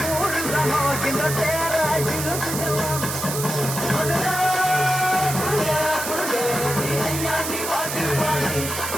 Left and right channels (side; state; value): right; noise; hiss, 5 dB below the sound